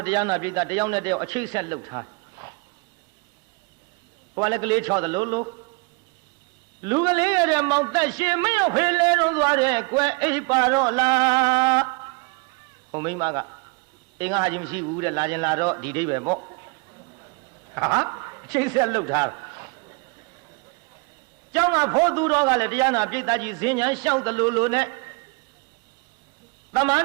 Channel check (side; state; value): left; quieter; 29.4 dB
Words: ့တရားနာပြည်တယောက်နဲ့တယောက်အချိတ်ဆက်လှုပ်ထားဟိုကလည်းကလေးချော်တယ်လို့လူကလေးရတဲ့မောင်သက်ရှင်မရောက်ဖေးလဲတော့သွားတယ်ကွယ်အိပ်ပါတော့လားဟိုမိမကအင်းငါဟာကြီးမရှိဘူးတဲ့လာခြင်းလာတော့ဒီဒိဗ္ဗေပေါ့ဟာအချိတ်ဆက်လှုပ်ထားကျောင်းကဖိုးသူတော်ကလည်းတရားနာပြိတ္တကြီးဇင်းညာလျှောက်တယ်လို့နဲ့သမန